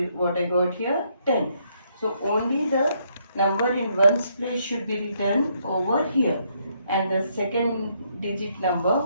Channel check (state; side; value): inverted; both; correlation -0.73